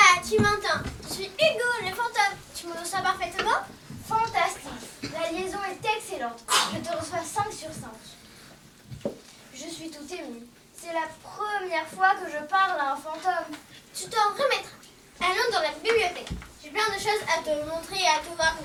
tu m'entends. Je suis Hugo, le fantôme. Tu me reçois parfaitement? Fantastique. La liaison est excellente. Je te reçois 5 sur 5. Je suis tout émue. C'est la première fois que je parle à un fantôme. Tu t'en remettras. Allons dans la bibliothèque. J'ai plein de choses à te montrer et à te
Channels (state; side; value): identical; both; correlation 1.00